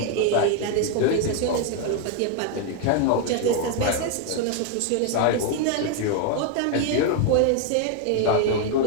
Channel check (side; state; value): both; different; correlation 0.01